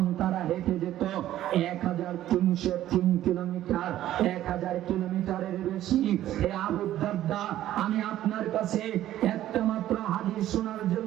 তারা হেঁটে যেত 1303 কিলোমিটার, 1000 কিলোমিটারের বেশি। হে আবু দারদা, আমি আপনার কাছে একটা মাত্র হাদিস শোনার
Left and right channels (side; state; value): left; quieter; 13.1 dB